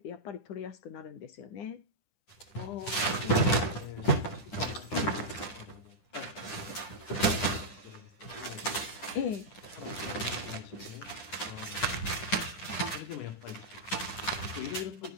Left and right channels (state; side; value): late; right; 9.9 ms